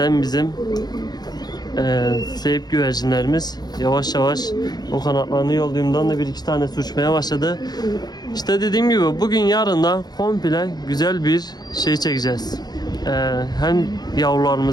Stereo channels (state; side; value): late; right; 0.20 ms